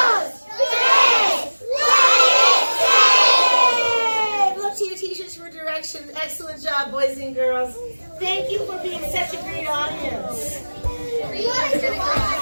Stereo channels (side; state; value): both; inverted; correlation -1.00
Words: tres. Look to your teachers for directions. Excellent job, boys and girls. Thank you for being such a great audience. Oh,